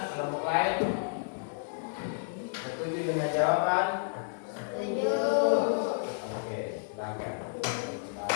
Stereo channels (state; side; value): silent; right; 57 dB below the other